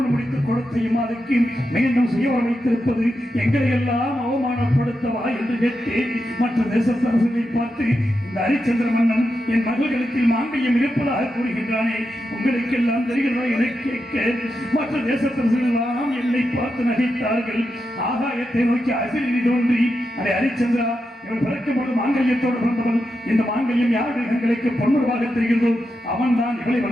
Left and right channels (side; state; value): both; normal; correlation 0.87